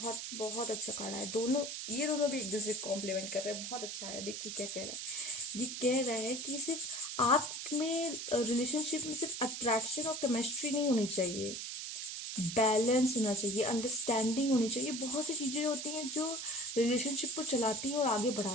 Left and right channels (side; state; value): right; noise; hiss, 6 dB below the sound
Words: बहुत अच्छा कार्ड है। ये दोनों भी एक दूसरे को कॉम्प्लीमेंट कर रहे हैं, बहुत अच्छा है। देखिए क्या कह रहा है। ये कह रहा है कि सिर्फ आप में रिलेशनशिप में सिर्फ अट्रैक्शन और केमिस्ट्री नहीं होनी चाहिए, बैलेंस होना चाहिए, अंडरस्टैंडिंग होनी चाहिए। बहुत सी चीजें होती हैं जो रिलेशनशिप को चलाती हैं और आगे